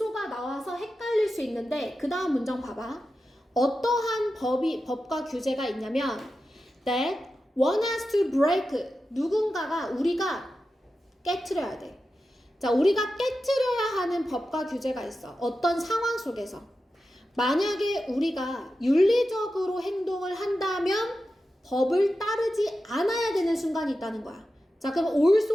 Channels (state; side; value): normal; both; correlation 0.91